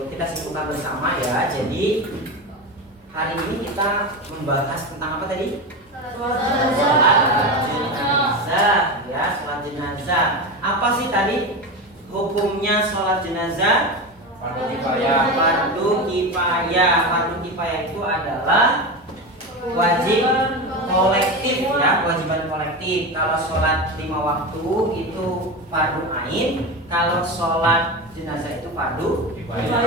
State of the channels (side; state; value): both; normal; correlation 0.21